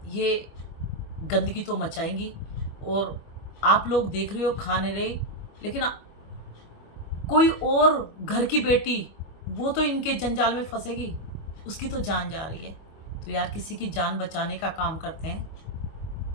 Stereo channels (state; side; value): late; right; 25 ms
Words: ये गंदगी तो मचाएंगी। और आप लोग देख रहे हो खा नहीं रहे, लेकिन कोई और घर की बेटी वो तो इनके जंजाल में फंसेगी, उसकी तो जान जा रही है। तो यार किसी की जान बचाने का काम करते